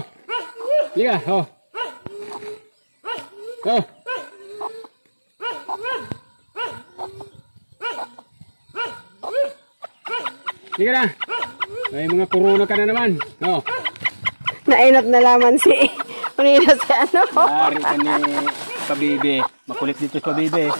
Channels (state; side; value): inverted; both; correlation -1.00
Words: Liga, oh. Oh. Liga na. May mga corona ka na naman. Oh. Nainap na laman si Manila si ano. Dari ka ni Pabibi. Makulit dito si Pabibi.